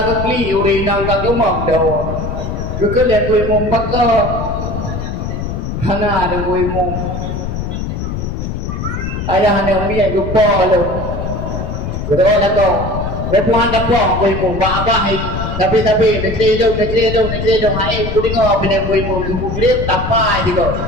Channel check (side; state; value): left; noise; rumble, 4 dB below the sound